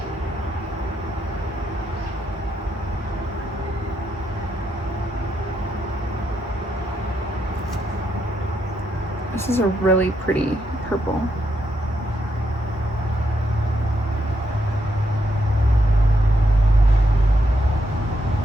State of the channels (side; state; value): both; normal; correlation 0.79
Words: This is a really pretty purple.